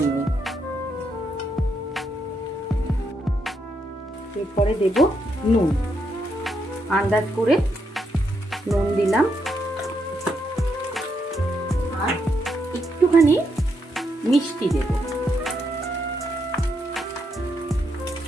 এরপরে দেব নুন, আন্দাজ করে নুন দিলাম, আর একটুখানি মিষ্টি দেব।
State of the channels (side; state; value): both; normal; correlation 0.79